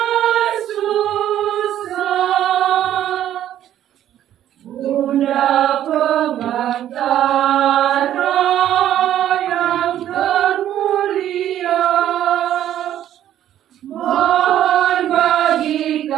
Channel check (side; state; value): left; quieter; 11.6 dB